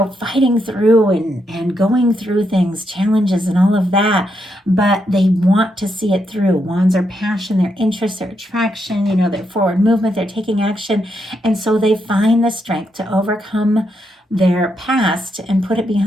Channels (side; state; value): both; normal; correlation 0.80